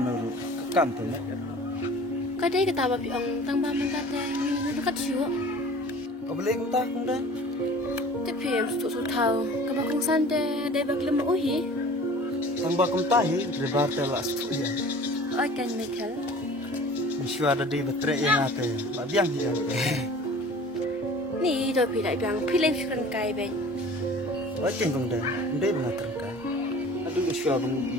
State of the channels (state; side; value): normal; both; correlation 0.44